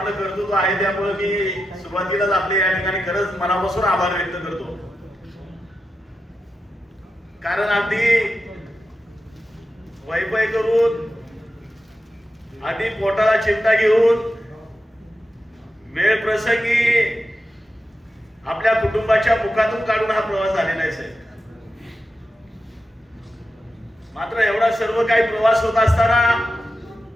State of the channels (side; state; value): both; normal; correlation 0.89